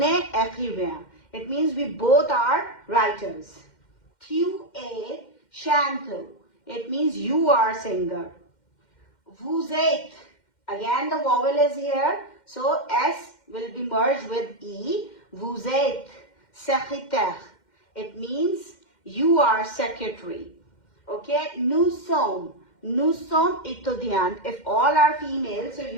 écrivain. It means we both are writers. Q-A, chanteuse. It means you are singer. Vous êtes. Again the vowel is here. So S will be merged with E. Vous êtes secrétaire. It means you are secretary. Okay. Nous sommes étudiantes. If all are female, so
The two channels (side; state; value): right; late; 2.1 ms